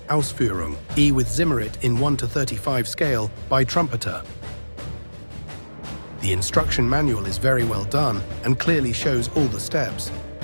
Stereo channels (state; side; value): inverted; both; correlation -1.00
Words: Ausf E with Zimmerit in 1:35 scale by Trumpeter. The instruction manual is very well done and clearly shows all the steps,